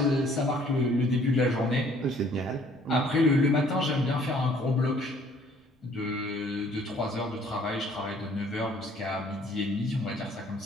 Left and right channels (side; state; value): both; normal; correlation 0.59